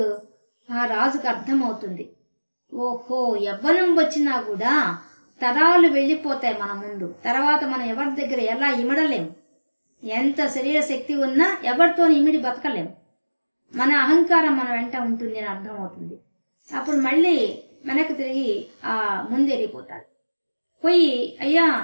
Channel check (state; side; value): inverted; both; correlation -1.00